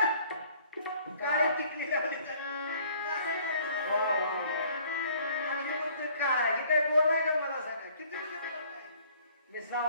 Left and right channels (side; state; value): both; inverted; correlation -0.57